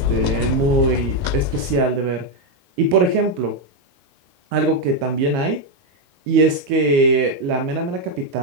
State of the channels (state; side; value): late; left; 22 ms